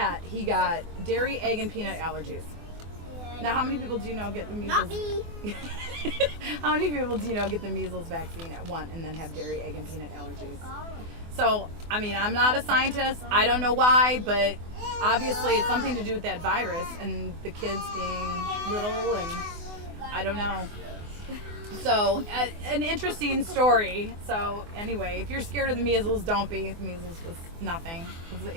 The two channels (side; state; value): left; late; 24 ms